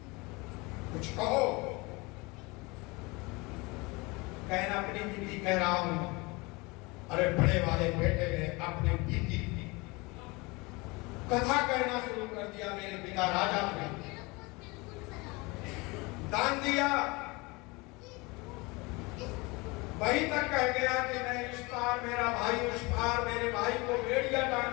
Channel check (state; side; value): quieter; right; 25.4 dB